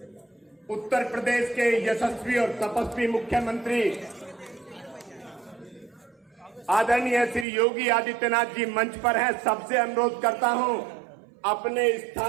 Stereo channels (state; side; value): drops out; left; at 7.5 s